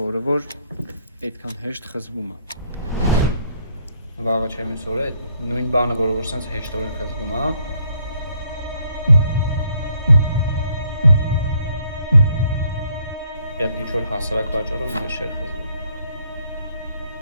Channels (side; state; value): both; inverted; correlation -0.69